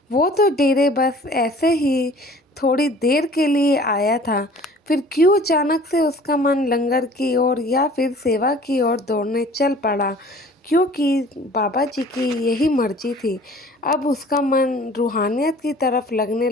वो तो डेरे बस ऐसे ही थोड़ी देर के लिए आया था, फिर क्यों अचानक से उसका मन लंगर की ओर या फिर सेवा की ओर दौड़ने चल पड़ा? क्योंकि बाबा जी की यही मर्जी थी। अब उसका मन रूहानियत की तरफ लगने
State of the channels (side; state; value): both; normal; correlation 0.49